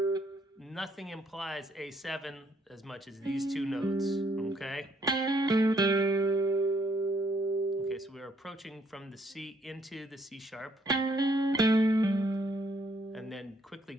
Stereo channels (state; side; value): normal; both; correlation 0.69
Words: Nothing implies A7 as much as these two notes, okay? Okay, so we're approaching from the C into the C sharp, and then quickly